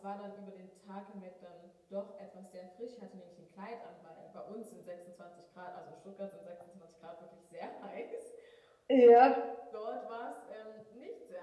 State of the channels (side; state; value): both; identical; correlation 1.00